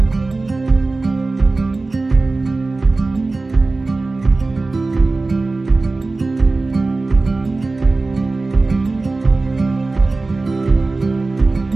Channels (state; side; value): quieter; left; 3.4 dB